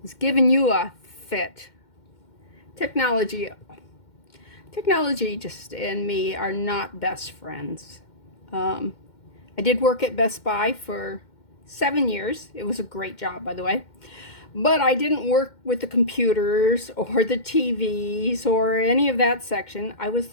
giving you a fit? Technology just and me are not best friends. I did work at Best Buy for 7 years. It was a great job, by the way. But I didn't work with the computers or the TVs or any of that section. I was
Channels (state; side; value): late; right; 2.1 ms